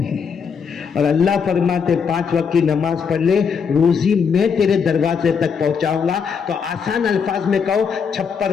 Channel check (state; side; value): quieter; right; 6.3 dB